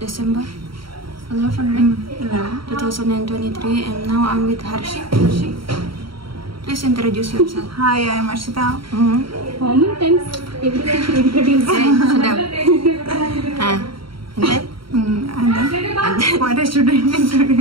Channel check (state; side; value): late; left; 0.74 ms